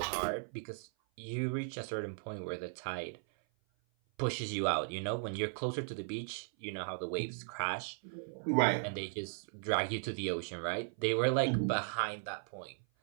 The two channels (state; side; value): silent; left; 53 dB below the other